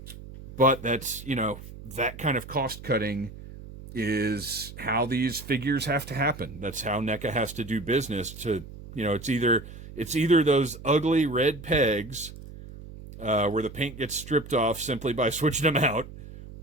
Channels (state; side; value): noise; right; hum, 14 dB below the sound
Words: But that's, you know, that kind of cost cutting is how these figures have to happen. That's how NECA has to do business to, you know, it's either those ugly red pegs where the paint gets stripped off simply by switching them out,